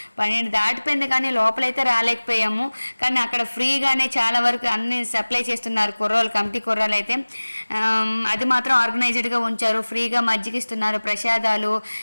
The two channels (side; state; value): both; inverted; correlation -1.00